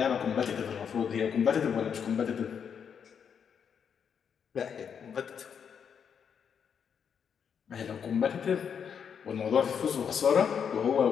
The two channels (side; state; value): right; quieter; 7.3 dB